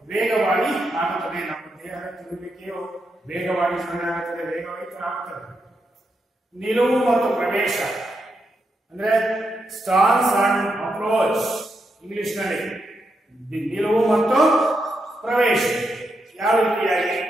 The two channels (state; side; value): normal; both; correlation 0.83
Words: ವೇಗವಾಗಿ ಆಗುತ್ತದೆ. ನಮ್ಮ ದೇಹದ ತಿರುಗುವಿಕೆಯು ವೇಗವಾಗಿ ಆಗುತ್ತದೆ, ವೇಗವಾಗಿ ಆಗುತ್ತದೆ. ನಿಲುವು ಮತ್ತು ಪ್ರವೇಶ ಅಂದ್ರೆ ಸ್ಟಾನ್ಸ್ ಅಂಡ್ ಅಪ್ರೋಚ್ ಇಂಗ್ಲಿಷ್ ನಲ್ಲಿ. ನಿಲುವು ಮತ್ತು ಪ್ರವೇಶ ಯಾವ ರೀತಿಯಾಗಿ?